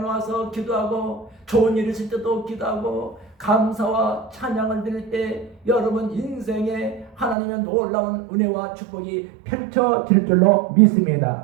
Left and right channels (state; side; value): drops out; left; at 7.4 s